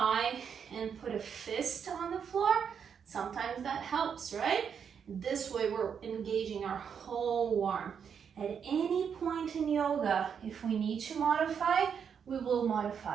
and put a fist on the floor. Sometimes that helps, right? This way we're engaging our whole arm. At any point in yoga, if we need to modify, we will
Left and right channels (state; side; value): quieter; left; 7.2 dB